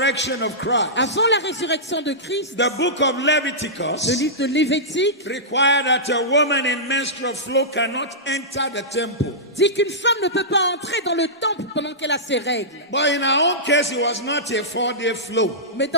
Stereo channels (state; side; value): normal; both; correlation -0.15